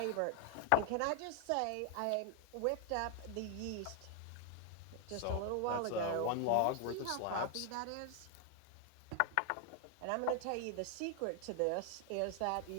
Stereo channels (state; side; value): different; both; correlation 0.00